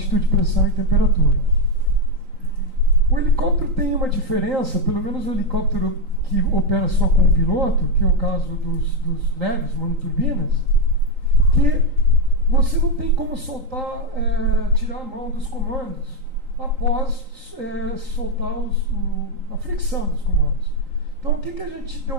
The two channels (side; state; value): left; late; 3.8 ms